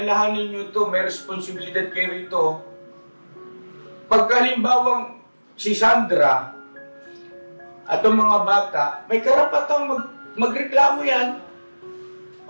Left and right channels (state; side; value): inverted; both; correlation -1.00